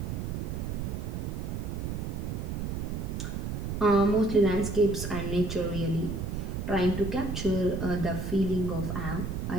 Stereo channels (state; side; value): noise; right; rumble, 3 dB below the sound